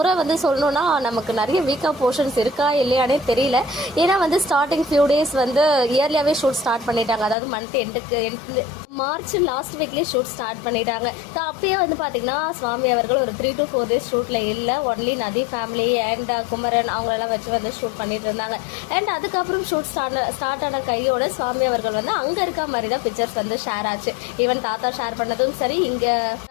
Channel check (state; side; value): drops out; right; at 7.4 s